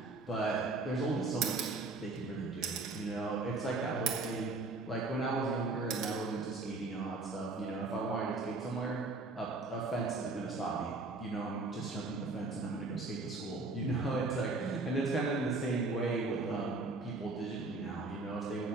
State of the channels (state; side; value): quieter; left; 3.5 dB